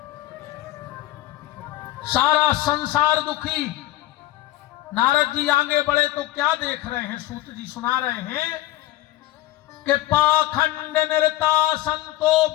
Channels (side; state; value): right; quieter; 15.2 dB